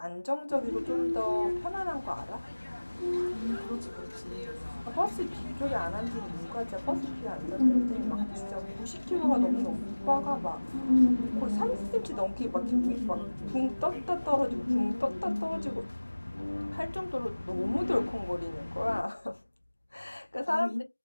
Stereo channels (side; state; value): both; inverted; correlation -1.00